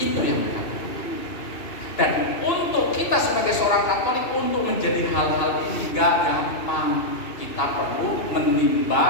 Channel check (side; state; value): right; late; 2.6 ms